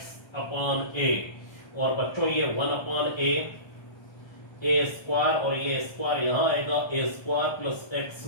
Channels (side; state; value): right; late; 1.3 ms